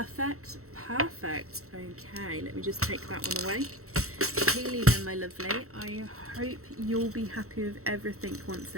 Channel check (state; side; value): late; left; 0.64 ms